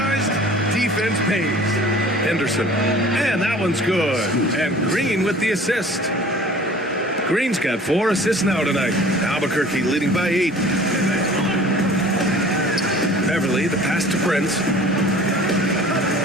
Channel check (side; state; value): both; normal; correlation 0.47